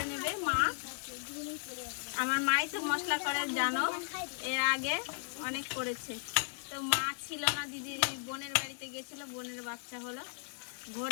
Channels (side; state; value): right; silent; 54 dB below the other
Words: নেবে মা। আমার মাই তো মশলা করে জানো, এর আগে অনেক করেছে। তো মা ছিল না, দিদির বোনের বাড়িতে গেছিল, বোনের বাচ্চা হলো, ভোট